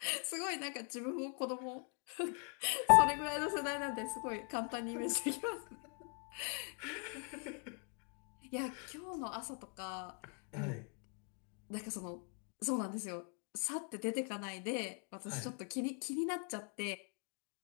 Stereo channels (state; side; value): quieter; right; 37.7 dB